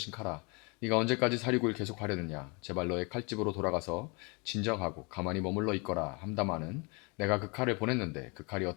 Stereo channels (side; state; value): right; quieter; 30.6 dB